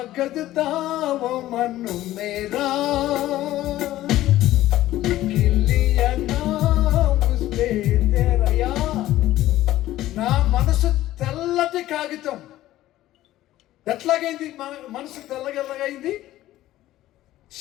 ताव मन मेरा लिख लिया नाम उस पे तेरा. या నా మనసు తెల్లటి కాగితం. ఎట్లాగైంది మనసు తెల్లగెల్లగైంది?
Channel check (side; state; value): right; quieter; 14.8 dB